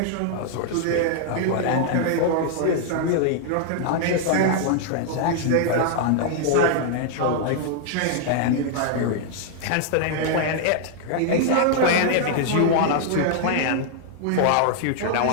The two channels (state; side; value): different; both; correlation 0.00